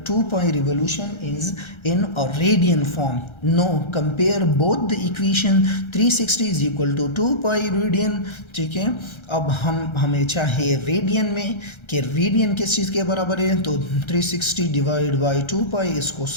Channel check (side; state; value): right; late; 1.3 ms